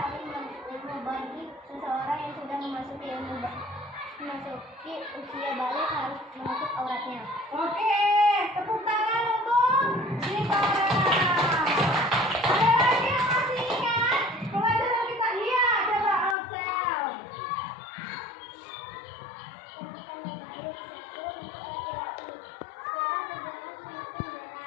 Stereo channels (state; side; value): drops out; right; at 16.4 s